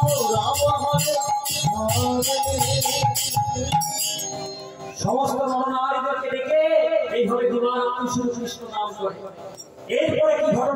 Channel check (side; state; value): both; identical; correlation 1.00